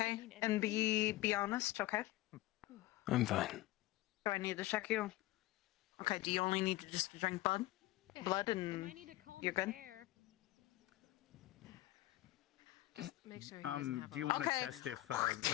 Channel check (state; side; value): quieter; right; 17.3 dB